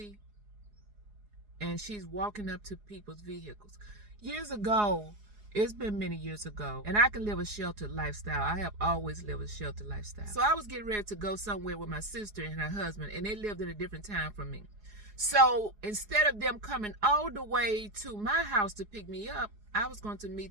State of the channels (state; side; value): late; left; 4.8 ms